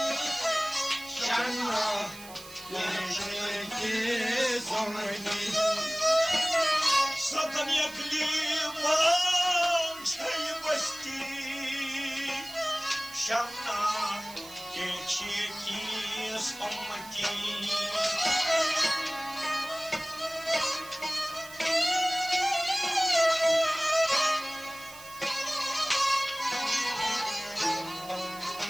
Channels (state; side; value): noise; right; hiss, 17 dB below the sound